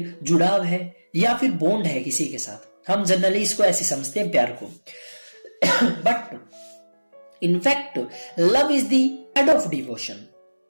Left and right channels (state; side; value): inverted; both; correlation -1.00